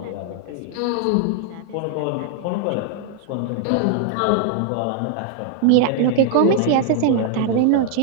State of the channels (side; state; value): both; different; correlation 0.00